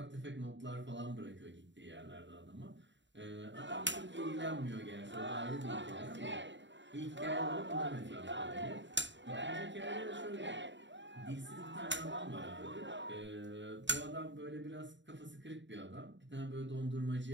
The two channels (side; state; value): left; late; 0.53 ms